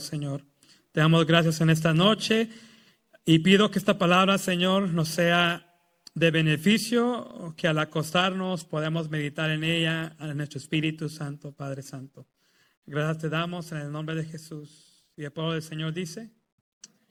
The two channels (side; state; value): both; identical; correlation 1.00